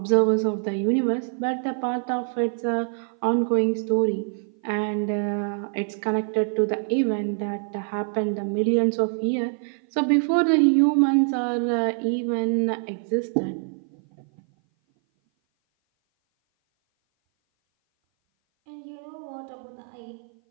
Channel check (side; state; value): left; silent; 57 dB below the other